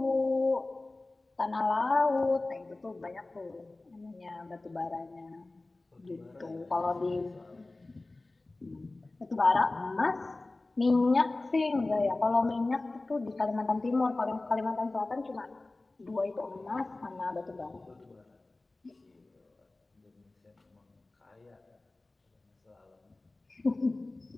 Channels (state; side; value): quieter; right; 3.1 dB